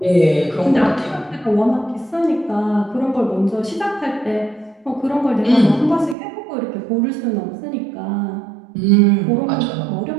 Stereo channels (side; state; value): left; drops out; at 6.2 s